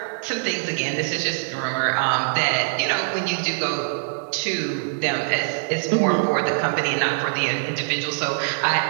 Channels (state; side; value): silent; left; digital silence